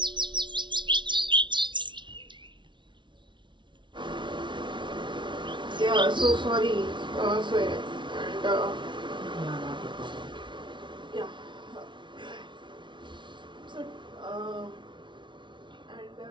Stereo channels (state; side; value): late; left; 0.24 ms